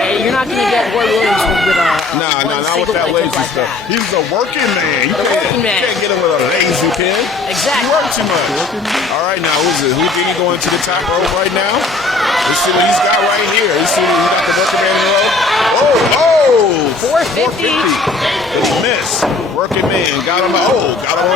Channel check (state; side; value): quieter; right; 3.7 dB